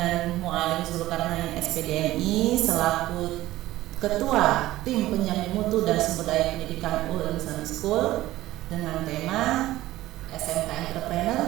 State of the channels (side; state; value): left; quieter; 16.0 dB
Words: Mu'alim Zulkarnain SPDMI selaku Ketua Tim Penjamin Mutu dan Sumber Daya Pendidikan Ulul Ilmi Islamic School dengan tema SMK Entrepreneur,